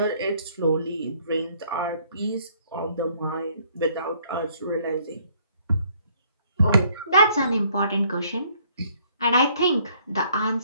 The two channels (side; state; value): both; inverted; correlation -0.64